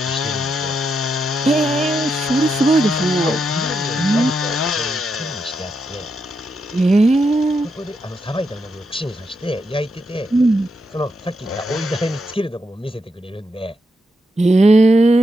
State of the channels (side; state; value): both; normal; correlation 0.83